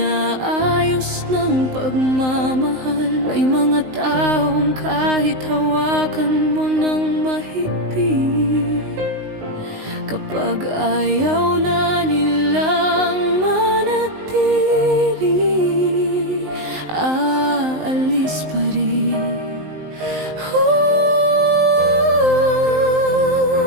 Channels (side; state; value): left; late; 19 ms